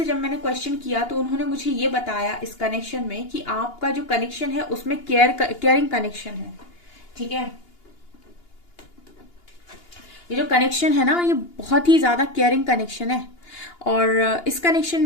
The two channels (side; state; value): right; late; 2.8 ms